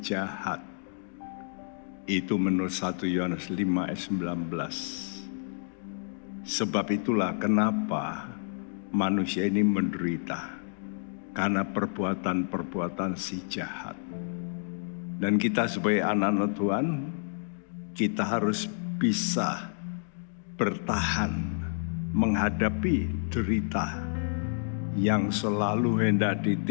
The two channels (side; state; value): right; silent; digital silence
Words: jahat. Itu menurut 1 Yohanes 5 ayat 19. Sebab itulah kenapa manusia ini menderita, karena perbuatan-perbuatan si jahat. Dan kita sebagai anak-anak Tuhan, kita harus bisa bertahan menghadapi derita yang selalu hendak